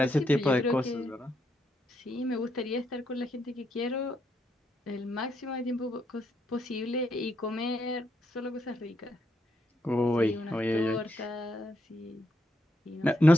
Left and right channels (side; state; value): both; normal; correlation 0.78